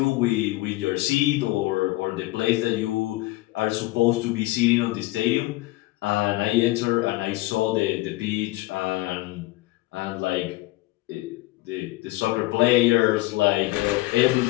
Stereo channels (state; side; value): quieter; right; 19.4 dB